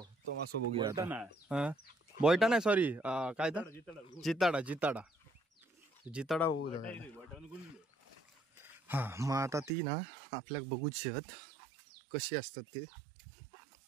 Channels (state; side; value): drops out; left; at 9.7 s